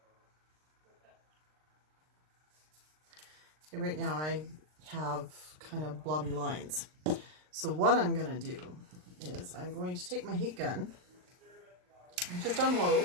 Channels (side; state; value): left; late; 39 ms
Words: Okay, right now I have kind of blobby lines. So what I'm going to do is I'm going to take my heat gun, just on low,